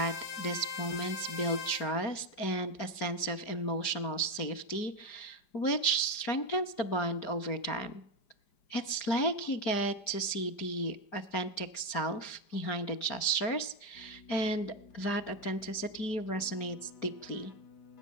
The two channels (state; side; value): late; right; 4.9 ms